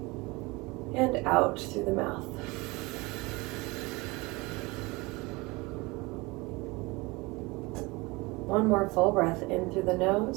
and out through the mouth. One more full breath in through the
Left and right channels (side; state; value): left; quieter; 24.1 dB